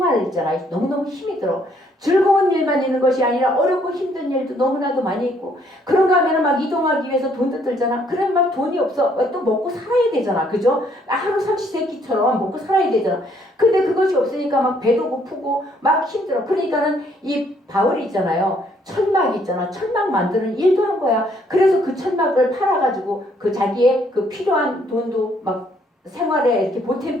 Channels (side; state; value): both; normal; correlation 0.66